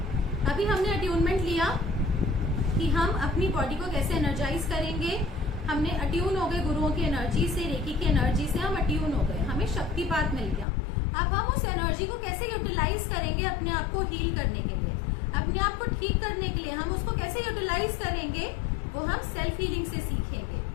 अभी हमने अट्यूनमेंट लिया कि हम अपनी बॉडी को कैसे एनर्जाइज करेंगे। हमने अट्यून हो गए गुरुओं की एनर्जी से, रेकी की एनर्जी से हम अट्यून हो गए, हमें शक्तिपात मिल गया। अब हम उस एनर्जी को कैसे यूटिलाइज करेंगे अपने आप को हील करने के लिए, अपने आप को ठीक करने के लिए, हम उसको कैसे यूटिलाइज करेंगे वो हम सेल्फ हीलिंग से सीखेंगे।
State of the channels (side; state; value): right; drops out; at 10.7 s